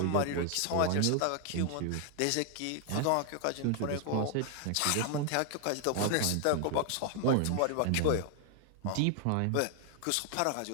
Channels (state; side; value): different; both; correlation 0.00